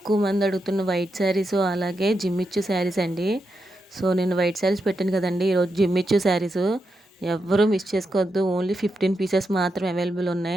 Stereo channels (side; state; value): both; normal; correlation 0.85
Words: మంది అడుగుతున్న వైట్ శారీసు, అలాగే జిమ్మిచ్చు శారీస్ అండి. సో, నేను వైట్ శారీస్ పెట్టాను కదండీ! ఈరోజు జిమ్మిచ్చు శారీసు. ఎవ్వరూ మిస్ చేసుకోవద్దు. ఓన్లీ 15 పీసెస్ మాత్రమే అవైలబుల్